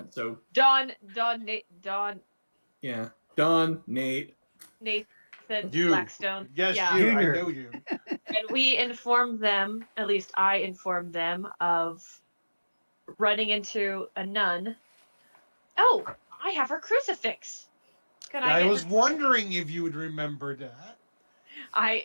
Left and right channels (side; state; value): both; inverted; correlation -1.00